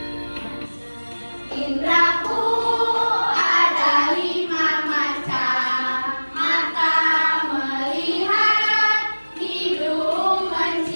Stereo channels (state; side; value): inverted; both; correlation -1.00